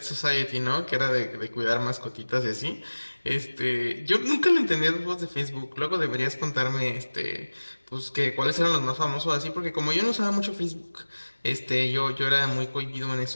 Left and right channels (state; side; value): inverted; both; correlation -1.00